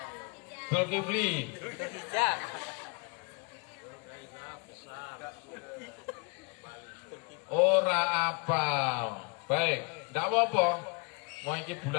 Zulkifli. Ora apal. Baik, ndak apa-apa. Mau iki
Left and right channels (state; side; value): quieter; right; 32.8 dB